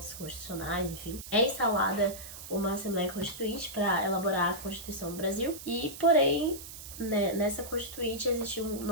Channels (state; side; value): noise; right; hiss, 12 dB below the sound